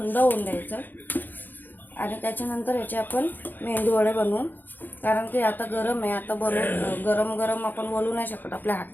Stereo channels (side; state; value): right; late; 0.088 ms